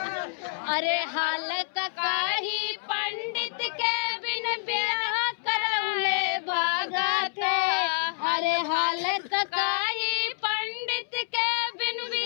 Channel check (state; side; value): silent; right; 60 dB below the other